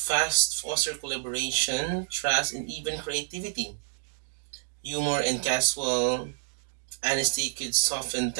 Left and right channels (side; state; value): left; silent; digital silence